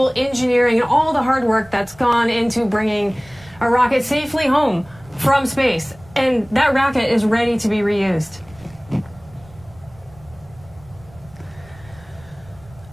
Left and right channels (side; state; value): right; noise; rumble, 24 dB below the sound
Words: engineering and all the hard work that's gone into bringing a rocket safely home from space. And that rocket is ready to be reused.